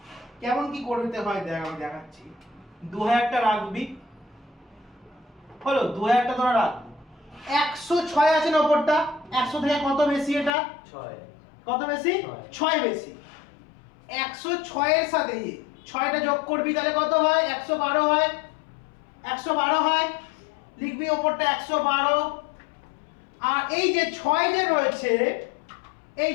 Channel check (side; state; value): right; drops out; at 10.5 s